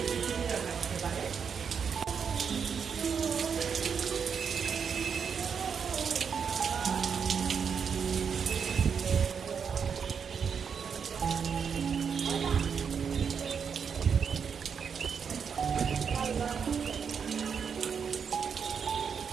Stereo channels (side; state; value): left; quieter; 6.7 dB